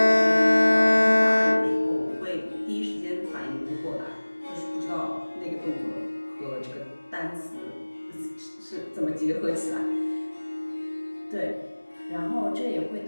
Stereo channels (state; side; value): inverted; both; correlation -1.00